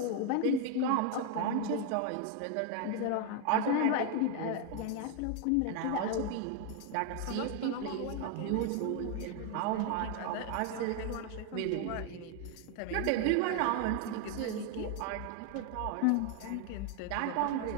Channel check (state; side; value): different; both; correlation 0.01